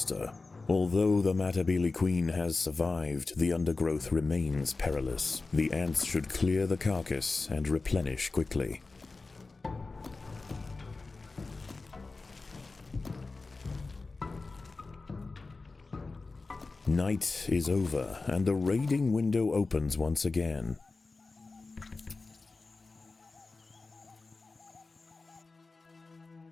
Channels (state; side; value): quieter; right; 3.7 dB